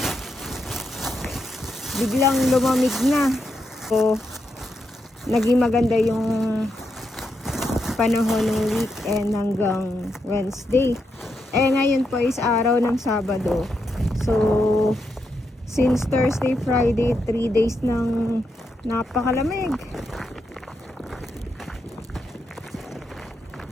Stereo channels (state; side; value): normal; both; correlation 0.83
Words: biglang lumamig na. So, naging maganda yung panahon ng weekend hanggang Wednesday. Ngayon po is araw ng Sabado. So, since Thursday, Friday, 3 days ng napakalamig.